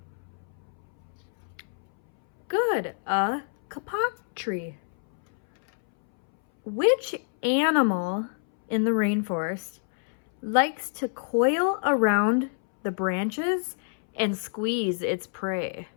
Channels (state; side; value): silent; right; 60 dB below the other